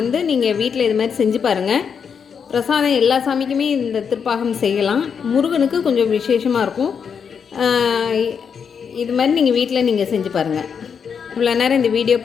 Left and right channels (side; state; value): right; quieter; 6.7 dB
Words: நீங்கள் வீட்டில் இது மாதிரி செஞ்சு பாருங்கள். பிரசாதம் எல்லா சாமிக்குமே இந்த திருப்பாகம் செய்யலாம். முருகனுக்கு கொஞ்சம் விசேஷமாக இருக்கும். இது மாதிரி நீங்கள் வீட்டில் நீங்கள் செஞ்சு பாருங்கள். இவ்வளோ நேரம் இந்த வீடியோ